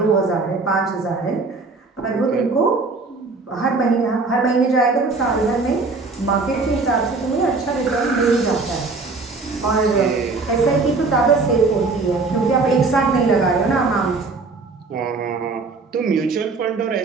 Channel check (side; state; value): left; quieter; 3.9 dB